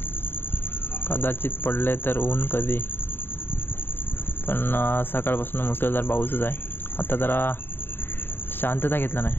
कदाचित पडले तर ऊन कधी, पण सकाळपासून मुसळधार पाऊसच आहे. आता जरा शांतता घेतला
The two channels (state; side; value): late; right; 0.10 ms